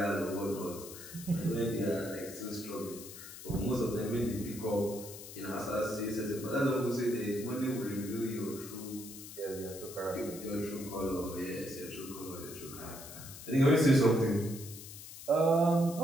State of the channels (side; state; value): left; noise; hiss, 13 dB below the sound